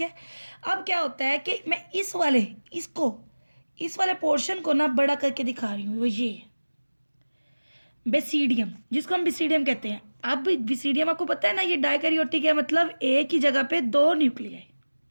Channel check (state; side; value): inverted; both; correlation -1.00